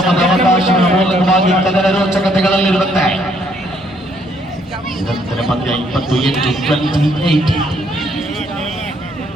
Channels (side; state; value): right; noise; hum, 28 dB below the sound